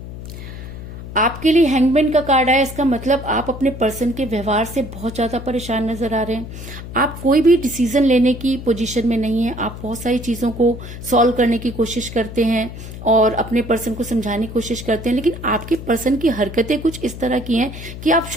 आपके लिए हैंगमैन का कार्ड आया, इसका मतलब आप अपने पर्सन के व्यवहार से बहुत ज्यादा परेशान नजर आ रहे हैं। आप कोई भी डिसीजन लेने की पोजीशन में नहीं है। आप बहुत सारी चीजों को सॉल्व करने की कोशिश करते हैं और अपने पर्सन को समझाने की कोशिश करते हैं, लेकिन आपके पर्सन की हरकतें कुछ इस तरह की हैं कि आप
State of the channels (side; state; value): left; noise; hum, 11 dB below the sound